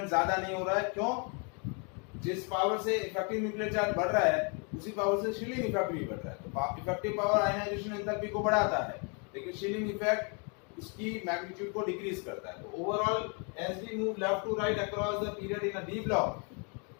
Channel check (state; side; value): quieter; right; 36.5 dB